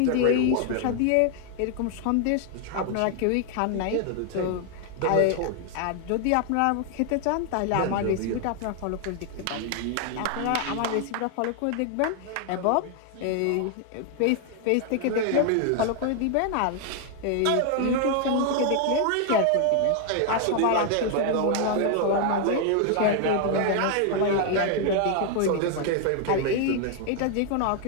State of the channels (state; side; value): different; both; correlation 0.00